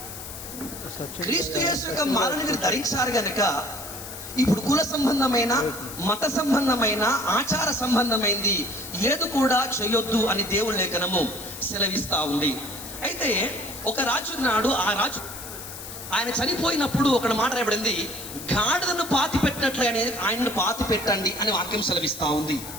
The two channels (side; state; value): left; noise; hiss, 11 dB below the sound